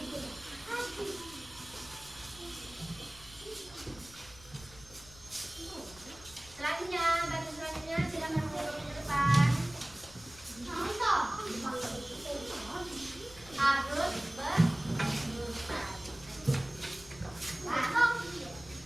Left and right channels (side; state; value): left; noise; rumble, 21 dB below the sound